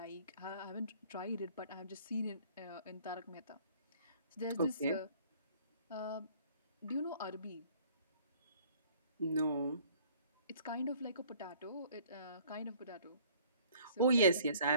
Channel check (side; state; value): both; inverted; correlation -0.55